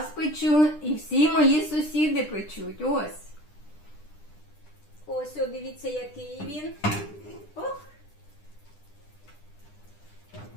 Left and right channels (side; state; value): right; late; 9.9 ms